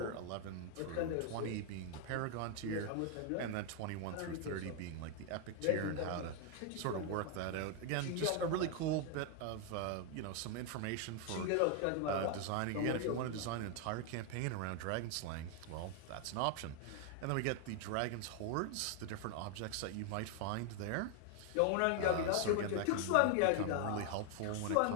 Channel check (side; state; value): both; different; correlation 0.00